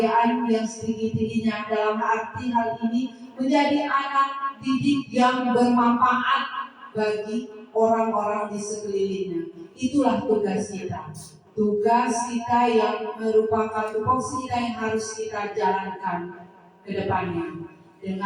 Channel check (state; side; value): identical; both; correlation 1.00